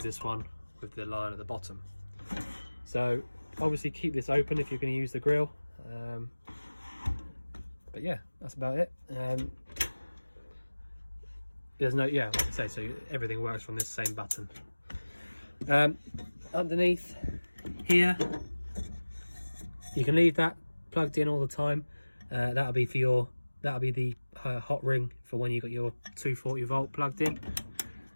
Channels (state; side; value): inverted; both; correlation -1.00